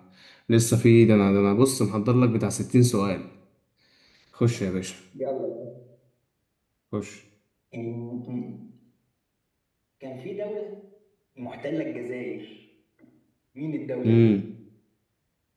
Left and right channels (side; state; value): both; identical; correlation 1.00